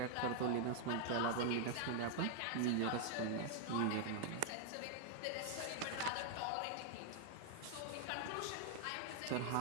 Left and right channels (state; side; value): different; both; correlation 0.00